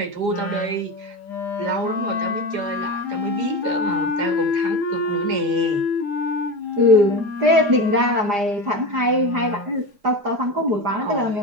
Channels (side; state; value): left; late; 4.9 ms